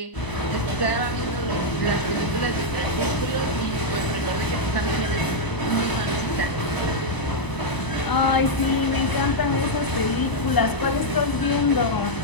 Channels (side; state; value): right; late; 1.0 ms